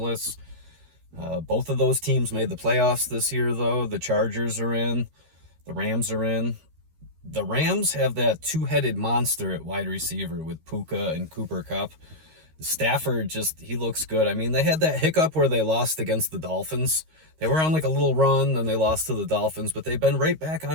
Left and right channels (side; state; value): left; late; 13 ms